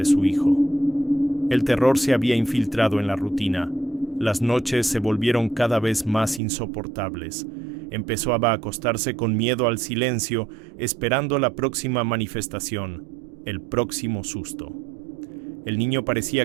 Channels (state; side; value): drops out; left; at 6.4 s